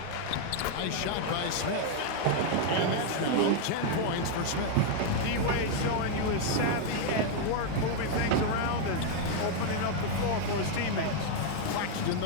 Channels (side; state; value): both; different; correlation 0.00